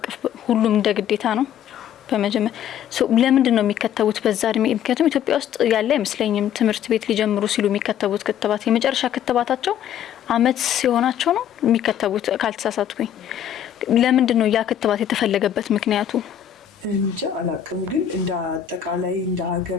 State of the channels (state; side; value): quieter; right; 9.9 dB